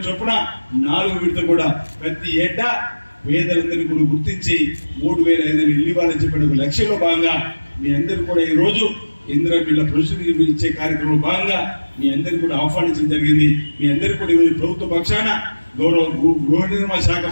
చొప్పున 4వ విడత కూడా ప్రతి ఏటా పేదలందరినీ కూడా గుర్తించి 3500 ఇల్లు ఇవ్వాలని చెప్పిన ఒక లక్ష్యంలో భాగంగా మీ అందరూ కూడా ఈ రోజు ఇంద్రమిల్ల పురుషులు ఇచ్చే కార్యక్రమంలో భాగంగా మీ అందరికీ కూడా ఆహ్వానించడం జరిగింది. మీ అందరికీ కూడా ఈరోజు ప్రభుత్వ పక్షాన గౌరవ గృహ నిర్మాణ శాఖ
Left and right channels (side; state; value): both; inverted; correlation -1.00